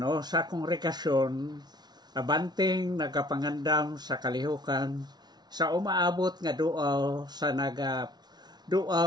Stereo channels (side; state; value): left; late; 0.20 ms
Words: sa kongregasyon, abanting nagapangandam sa kalihukan, sa umaabot nga duaw sa